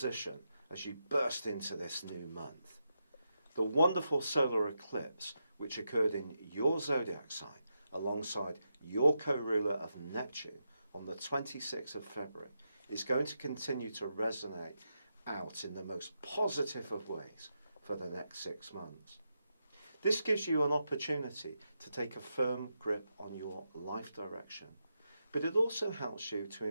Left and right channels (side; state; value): both; inverted; correlation -0.86